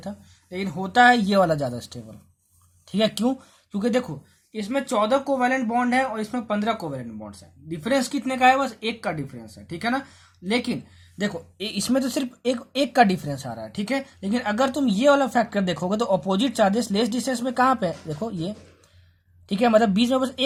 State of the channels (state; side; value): identical; both; correlation 1.00